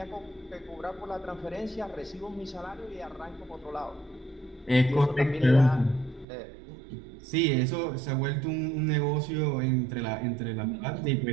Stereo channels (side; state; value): left; drops out; at 6.2 s